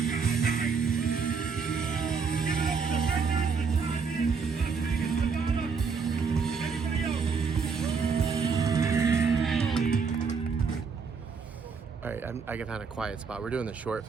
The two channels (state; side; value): quieter; left; 5.4 dB